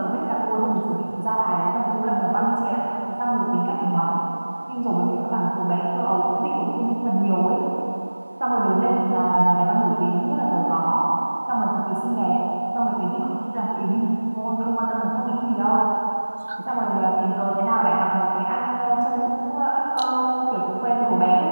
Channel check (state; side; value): inverted; both; correlation -1.00